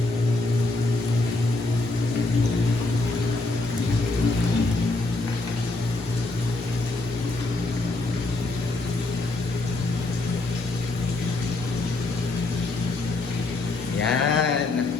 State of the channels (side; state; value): right; quieter; 3.1 dB